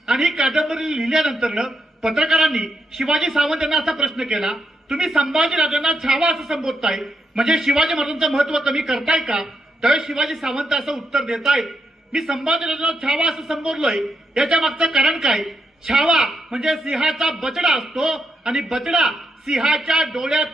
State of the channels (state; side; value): normal; both; correlation 0.81